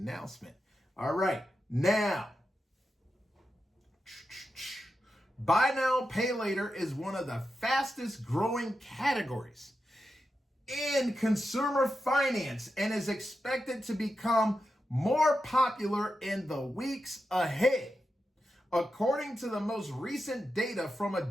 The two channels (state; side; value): normal; both; correlation 0.89